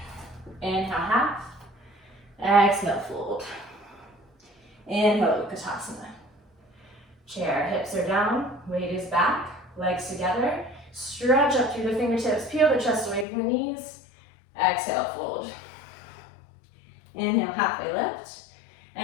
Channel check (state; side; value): drops out; right; at 13.2 s